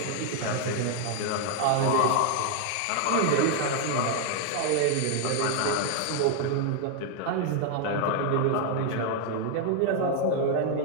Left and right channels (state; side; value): different; both; correlation 0.00